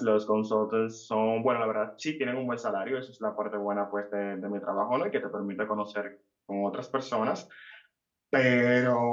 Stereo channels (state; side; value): identical; both; correlation 1.00